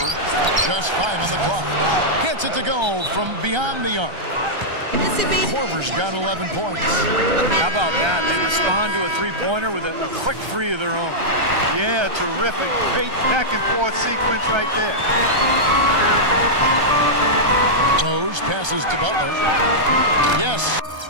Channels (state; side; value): late; left; 1.3 ms